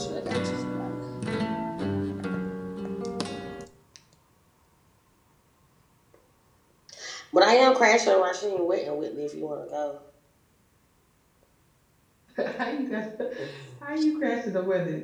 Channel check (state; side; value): identical; both; correlation 1.00